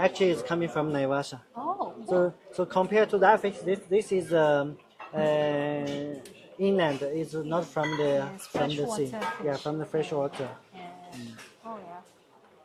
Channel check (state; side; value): identical; both; correlation 1.00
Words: is coming from Naivasha. Oh. So compared to that fish, this is inland. It's not from the Yes, from the sea. freshwater Yeah, fish. from the fresh water. Yeah. Oh yeah.